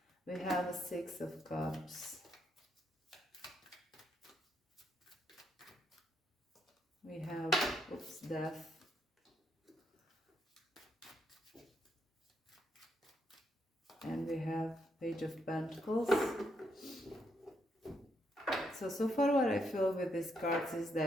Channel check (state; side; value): normal; both; correlation 0.77